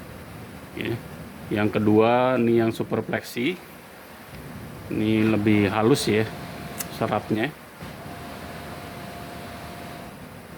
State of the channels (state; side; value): identical; both; correlation 1.00